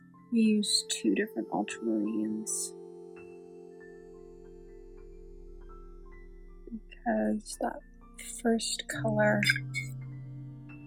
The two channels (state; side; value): identical; both; correlation 1.00